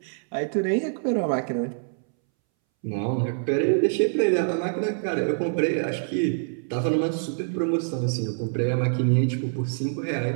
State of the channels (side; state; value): left; silent; 61 dB below the other